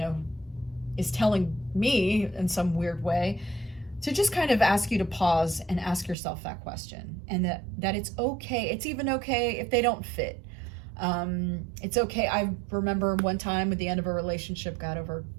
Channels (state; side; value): drops out; left; at 6.2 s